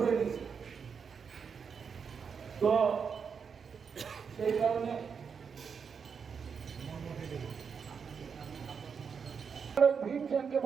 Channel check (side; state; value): left; quieter; 6.3 dB